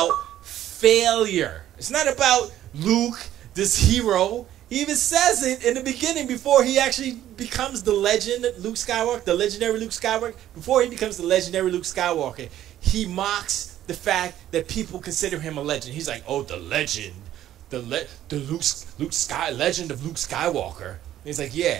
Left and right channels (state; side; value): quieter; left; 12.3 dB